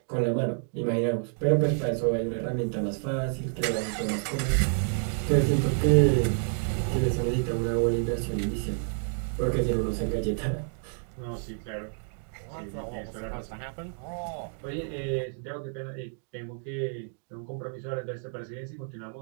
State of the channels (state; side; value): silent; left; 58 dB below the other